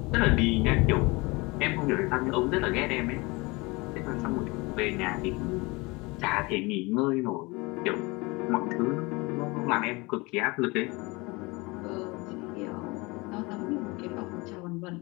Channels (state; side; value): quieter; right; 25.0 dB